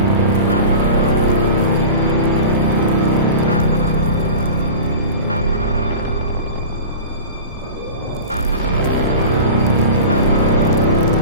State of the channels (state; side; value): inverted; both; correlation -0.34